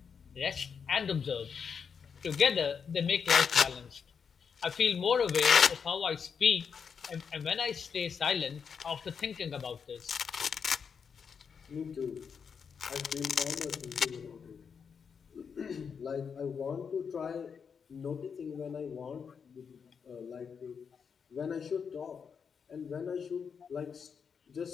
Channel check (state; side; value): quieter; right; 6.4 dB